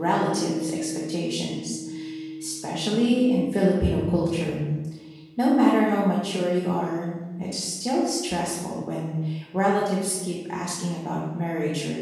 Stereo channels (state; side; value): identical; both; correlation 1.00